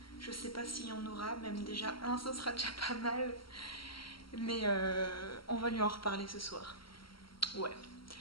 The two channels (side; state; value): right; late; 0.74 ms